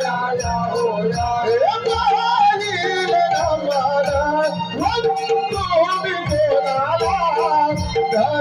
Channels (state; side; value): identical; both; correlation 1.00